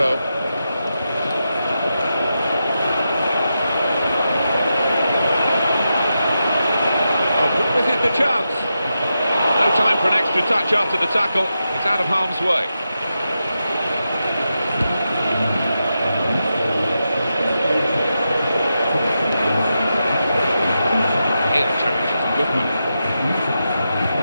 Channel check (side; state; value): both; inverted; correlation -0.88